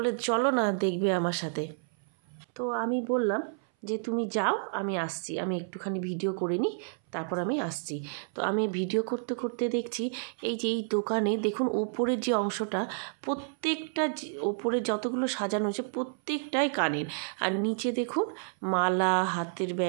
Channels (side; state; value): left; silent; 58 dB below the other